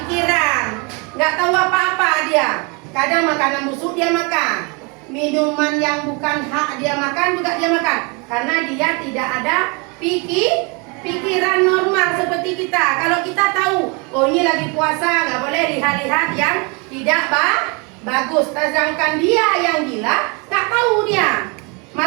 nggak tahu apa-apa dia. Kadang makanan busuk dia makan, minuman yang bukan hak dia makan juga dia makan, karena dia tidak ada pikiran normal seperti kita. Kalau kita tahu, oh ini lagi puasa, nggak boleh lihat-lihat yang tidak bagus. Sedangkan dia yang gila, nggak tahu dia.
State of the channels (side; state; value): left; quieter; 31.2 dB